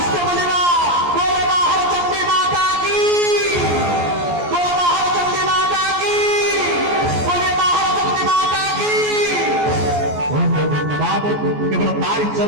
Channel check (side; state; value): left; late; 14 ms